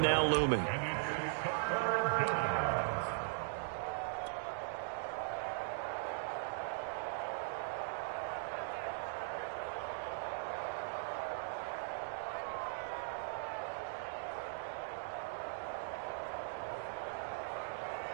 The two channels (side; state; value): left; silent; digital silence